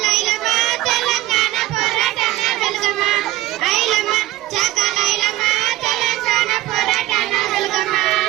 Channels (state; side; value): quieter; left; 16.1 dB